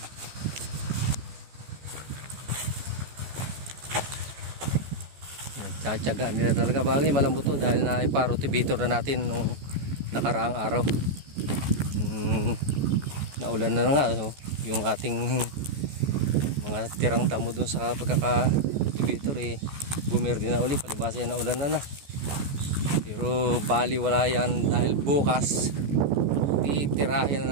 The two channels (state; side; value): late; left; 14 ms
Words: Tsatsaga nila talaga, bagay malambot to dahil na iparotivator na natin nung nakaraang araw. Naulan na nga yung ating mga tirang damo dun sa pagkaka-rotivator bumerde na uli, palibasa yan, naulan na. Pero bali wala yan dahil bukas titirahin